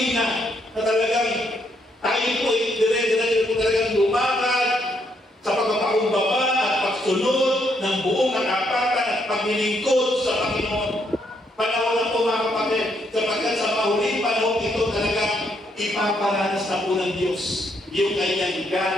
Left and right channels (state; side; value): normal; both; correlation 0.74